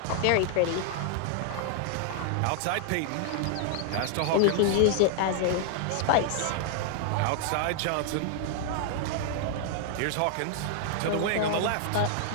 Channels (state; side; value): different; both; correlation 0.00